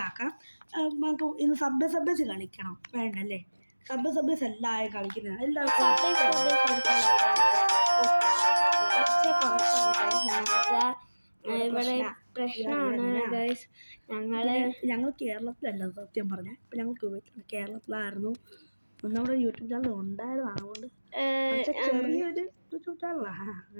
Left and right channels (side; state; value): both; inverted; correlation -1.00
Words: നമുക്ക് ഇന്ന് സബ്ബേസ് കളിക്കണം വേണ്ടല്ലേ? സബ്ബേസ് എല്ലാവരും കളിക്കുന്നതാണ്. എല്ലാവർക്കും ഇവിടെ പ്രശ്നമാണ് ഗൈസ്. ഞങ്ങൾ കേരളത്തിലല്ല സത്യം പറഞ്ഞാൽ. ഇപ്പം ഞങ്ങൾ കേരളത്തിലായിരുന്നു. നമ്മുടെ യൂട്യൂബ് ചാനൽ ഉണ്ടായിരുന്നു. അതുകൊണ്ട് ചെറിയൊരു യൂട്യൂബ് ചാനലാണ്,